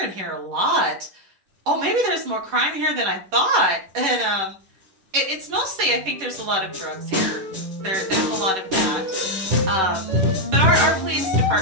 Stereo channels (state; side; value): late; left; 11 ms